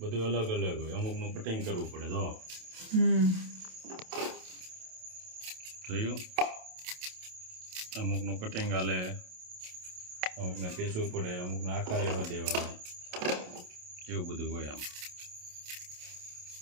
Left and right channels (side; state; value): left; late; 27 ms